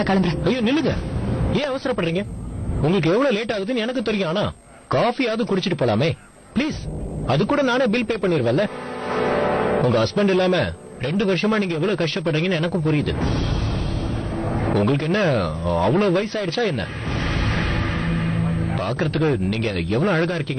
கிளம்புறேன். ஐயோ நில்லுங்க, ஏன் அவசரப்படுறீங்க? உங்களுக்கு எவ்வளவு லேட் ஆகுதுன்னு எனக்கு தெரியும். ஆனா காஃபியாவது குடிச்சிட்டு போலாமே ப்ளீஸ். அது கூட நானே பில் பே பண்ணிருவேன்ல. உங்க ஹஸ்பண்ட் இல்லாம 2 வருஷமா நீங்க எவ்வளவு கஷ்டப்படுறீங்கன்னு எனக்கும் புரியுது. உங்களுக்கு என்ன அவ்வளவு வயசாயிடுச்சா என்ன? பாக்குறதுக்கு நீங்க எவ்வளவு அழகா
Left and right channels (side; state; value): both; identical; correlation 1.00